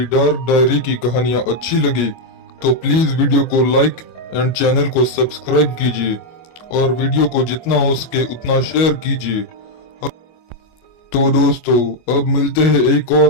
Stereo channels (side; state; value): right; late; 25 ms